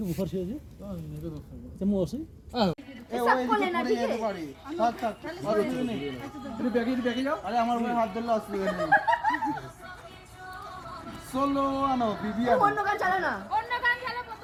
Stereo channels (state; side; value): identical; both; correlation 1.00